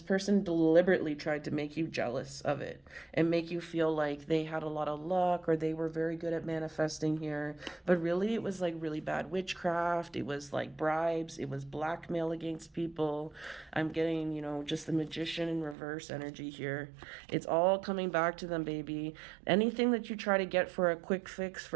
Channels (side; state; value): left; drops out; at 15.8 s